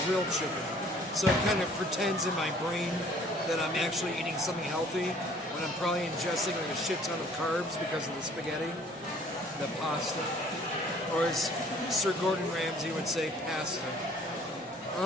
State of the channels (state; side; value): normal; both; correlation 0.56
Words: grilled chicken. So it kind of pretends in my brain that I'm actually eating something healthy when I'm probably ingesting like a shit ton of carbs because of the spaghetti, the pasta. Or as Sir Gordon Ramsay would say, pasta.